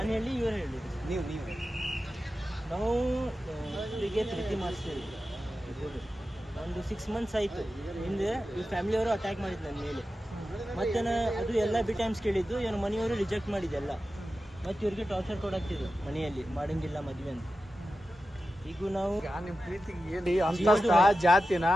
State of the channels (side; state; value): both; normal; correlation 0.92